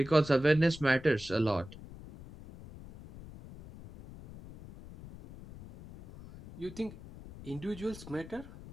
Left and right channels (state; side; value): noise; left; rumble, 16 dB below the sound